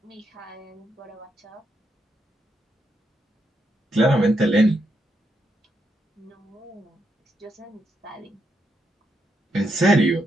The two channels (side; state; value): both; normal; correlation 0.81